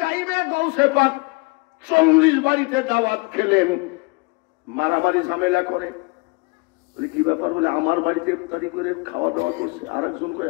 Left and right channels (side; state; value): right; quieter; 27.8 dB